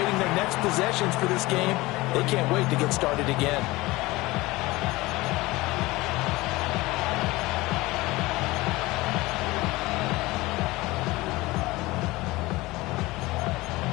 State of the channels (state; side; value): quieter; right; 20.5 dB